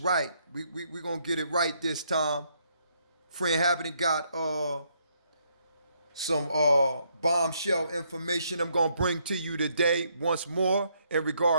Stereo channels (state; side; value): inverted; both; correlation -0.72